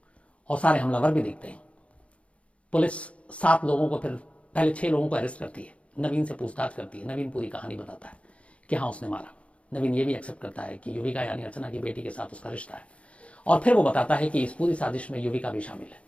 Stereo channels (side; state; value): right; late; 0.062 ms